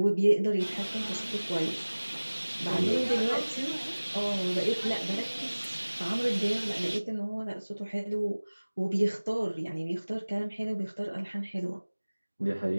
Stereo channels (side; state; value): both; inverted; correlation -1.00